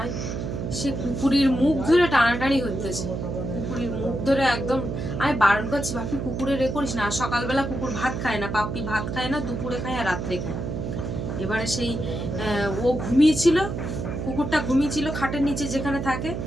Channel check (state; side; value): noise; right; hum, 4 dB below the sound